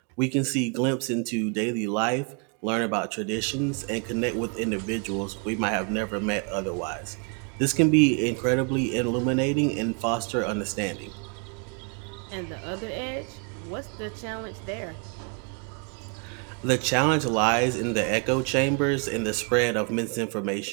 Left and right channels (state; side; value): quieter; left; 37.3 dB